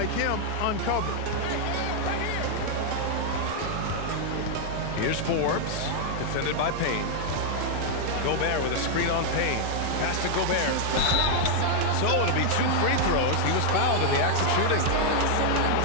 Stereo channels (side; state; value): both; different; correlation 0.00